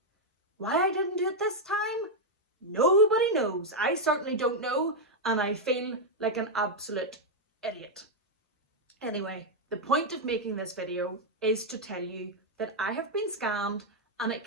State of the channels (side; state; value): both; normal; correlation -0.01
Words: Why I didn't do it this time? Nobody knows. I certainly don't know, and I feel like an absolute idiot. Anyway, the point of making this video is to tell you that I have been scammed and it